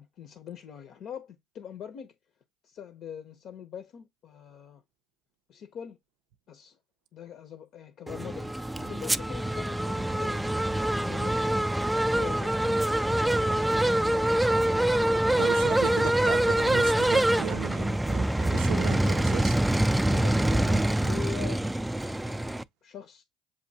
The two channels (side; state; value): both; normal; correlation 0.96